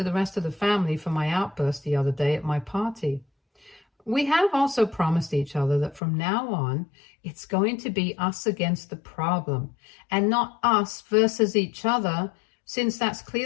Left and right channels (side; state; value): right; drops out; at 6.0 s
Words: the rest of the family for my outburst the other day at my party. We have also promised each other that from now on, it's going to be us against the problem and not us versus each other, since that's